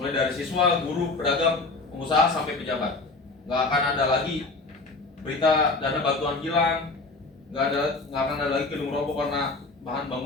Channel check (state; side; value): quieter; right; 3.5 dB